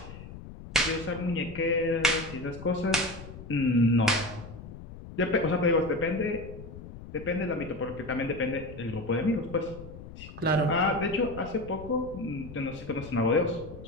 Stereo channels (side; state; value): left; noise; rumble, 14 dB below the sound